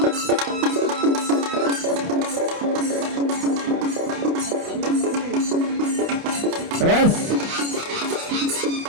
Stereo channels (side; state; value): left; late; 29 ms